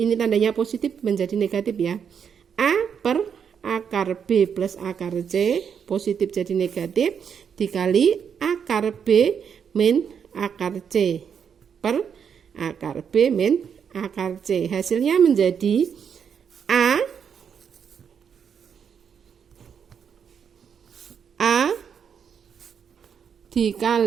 tandanya positif menjadi negatif ya. A per akar B plus akar C, positif jadi negatif, dikali akar B min akar C per akar B min akar C. Hasilnya menjadi A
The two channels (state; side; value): quieter; left; 7.4 dB